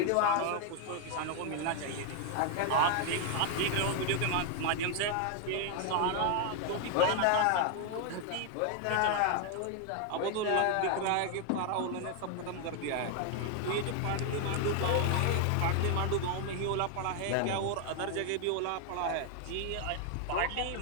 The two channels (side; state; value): both; different; correlation 0.00